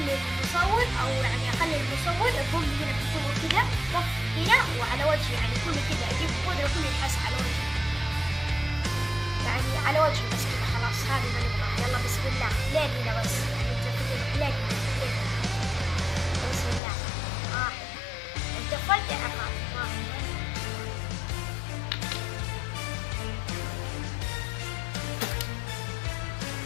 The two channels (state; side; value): drops out; right; at 16.8 s